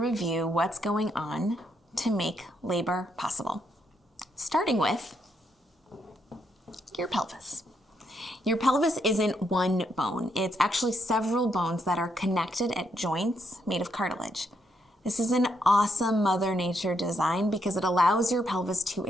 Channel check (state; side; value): normal; both; correlation 0.76